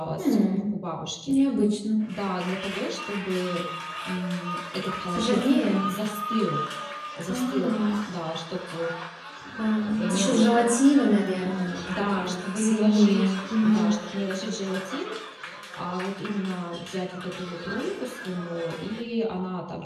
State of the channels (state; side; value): identical; both; correlation 1.00